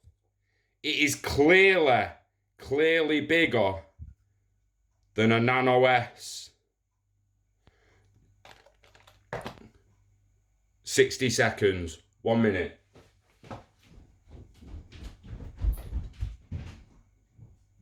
it is clearly bigger than a Nano S. 60 seconds, 1 minute.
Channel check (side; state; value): both; identical; correlation 1.00